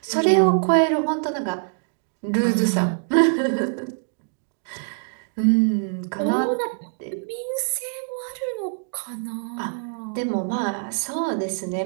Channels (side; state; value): left; silent; digital silence